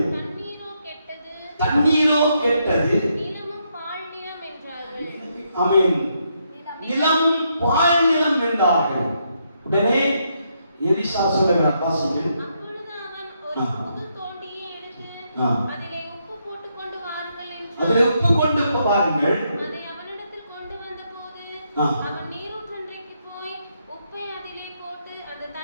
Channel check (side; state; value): both; inverted; correlation -0.78